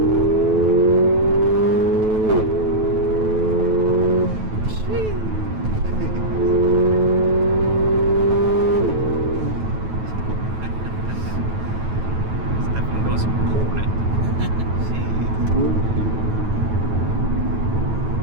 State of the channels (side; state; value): left; late; 9.2 ms